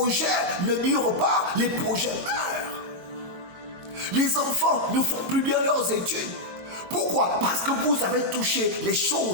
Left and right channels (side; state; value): left; late; 22 ms